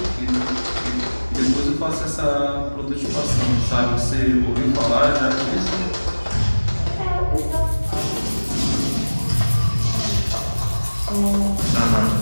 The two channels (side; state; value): both; inverted; correlation -1.00